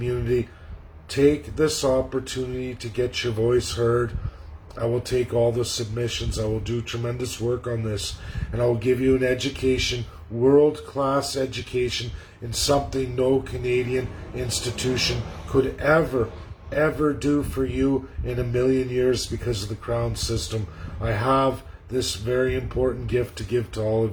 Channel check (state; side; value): identical; both; correlation 1.00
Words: take this opportunity to get your voice heard. I will take all the submissions. I will do tremendous work on this, and I will give you an education, world-class education, in something no Canadian institution could ever do for you in a million years because of the Crown system. I have this very important gift to give to all